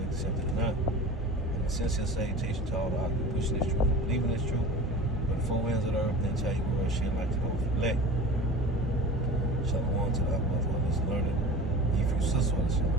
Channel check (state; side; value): normal; both; correlation 0.37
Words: accepted or not. Sincere salutation to all the occupants pushing this truth, believing this truth, but the four winds of the earth, then tell you where shit like to go elect. Shalom to the Abbas, one is learning, if you sister,